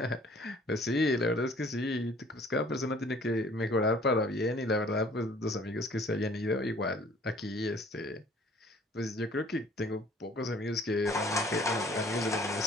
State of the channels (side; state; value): both; normal; correlation 0.55